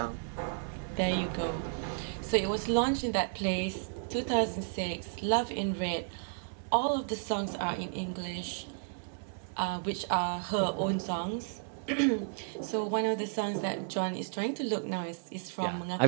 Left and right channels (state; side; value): silent; left; 56 dB below the other